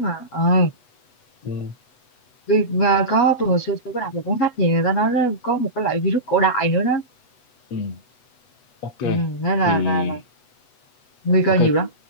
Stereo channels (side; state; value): right; late; 8.1 ms